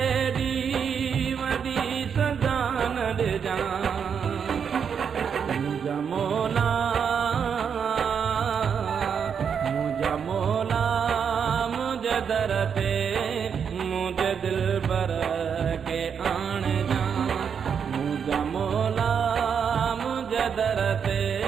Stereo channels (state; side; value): quieter; left; 7.1 dB